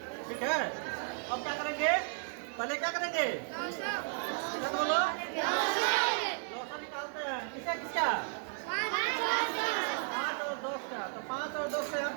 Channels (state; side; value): silent; left; 55 dB below the other